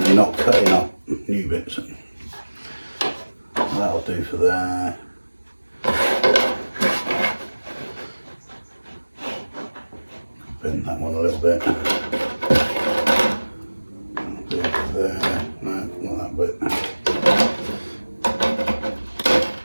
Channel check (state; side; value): inverted; both; correlation -1.00